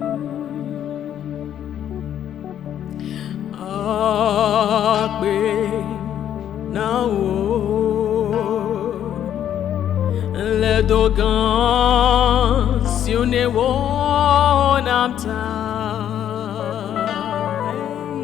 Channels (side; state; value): right; quieter; 10.2 dB